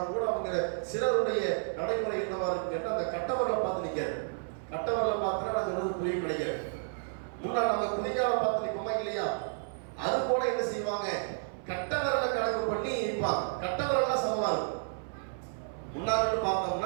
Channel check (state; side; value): silent; left; 57 dB below the other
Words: கூட அவங்க சிலருடைய நடைமுறை என்னவா இருக்கு கேட்டால், அந்த கட்டவர்களை பார்த்து நிற்காது. கட்டவர்களை பார்த்துனா நான் சொல்றது புரியும் கிடைக்கிறது. முன்னா நம்ம குதிகாலை பார்த்து நிற்போமா இல்லையா, அது போல என்ன செய்வாங்க? கட்டவர்களை கணக்கு பண்ணி நிற்பாங்க. கட்டவர்கள் சமமா இருக்கும். முன்னாடி